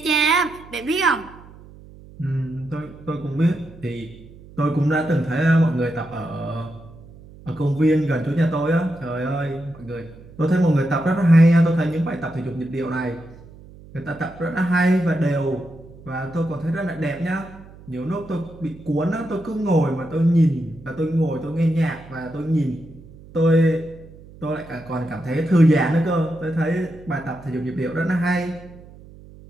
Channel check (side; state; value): right; noise; hum, 20 dB below the sound